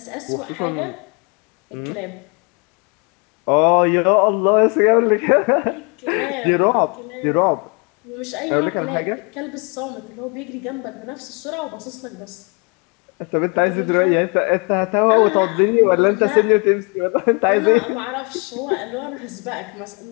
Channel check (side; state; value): right; quieter; 33.4 dB